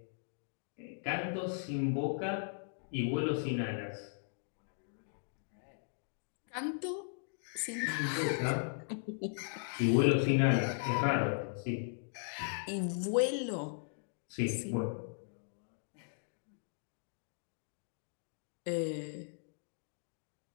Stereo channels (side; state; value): right; silent; digital silence